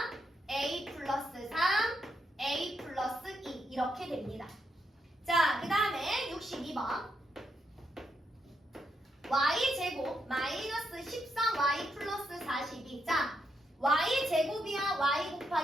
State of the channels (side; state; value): both; normal; correlation 0.80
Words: a 플러스 3, a 플러스 2 이렇게 됩니다. 자, 그 다음에 62번. y제곱 마이너스 13y 플러스 42. 자, y제곱이야 y